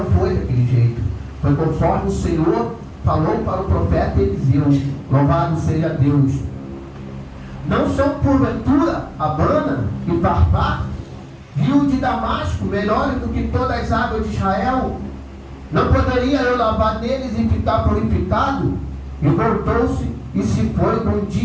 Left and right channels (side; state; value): both; identical; correlation 1.00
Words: foi daquele jeito. Foi conforme o Senhor falou para o profeta Eliseu. Louvado seja Deus. Não são porventura Abana e Farpar, rio de Damasco, melhores do que todas as águas de Israel? Não poderia eu lavar neles e ficar purificado? E voltou-se e se foi com